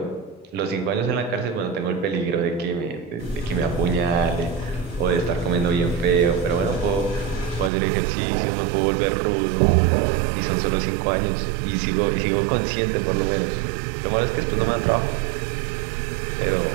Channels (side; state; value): left; drops out; at 7.7 s